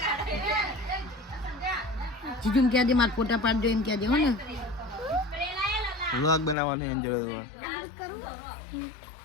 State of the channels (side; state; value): right; drops out; at 6.6 s